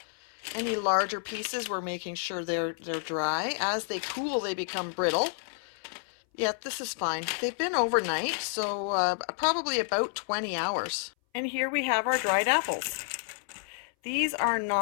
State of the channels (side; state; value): right; silent; 58 dB below the other